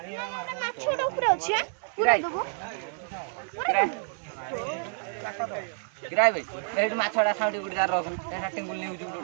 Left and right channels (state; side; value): silent; left; 58 dB below the other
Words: छोड़ ऊपर আছে পুরা দেবো किराय भाई रेडी माछड़ा खाउडी गुडी दार रखम तेरा टेंगुल नेउ